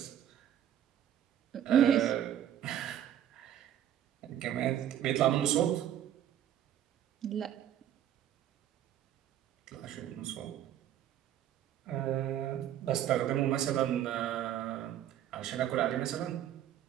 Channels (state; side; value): quieter; left; 10.9 dB